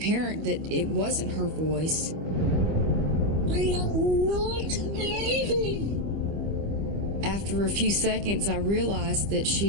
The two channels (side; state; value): left; late; 25 ms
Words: that it wasn't her voice. I am not leaving. After a few seconds, I realized that